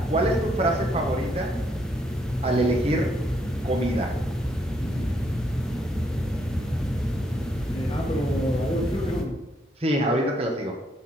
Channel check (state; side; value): normal; both; correlation 0.72